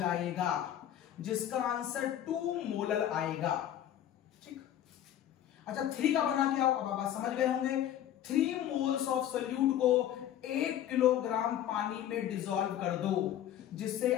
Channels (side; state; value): right; quieter; 11.3 dB